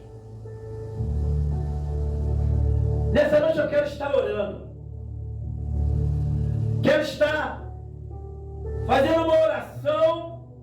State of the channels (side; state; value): both; identical; correlation 1.00